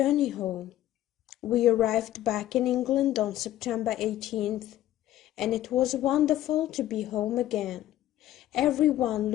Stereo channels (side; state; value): right; quieter; 13.6 dB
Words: home. We arrived back in England on September 18th, and it was wonderful to be home again. Everyone